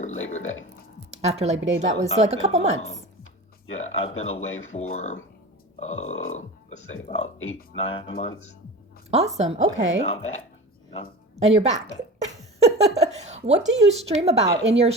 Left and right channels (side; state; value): both; normal; correlation 0.33